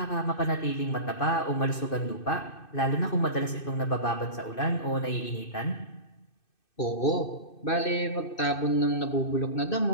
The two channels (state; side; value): late; right; 2.6 ms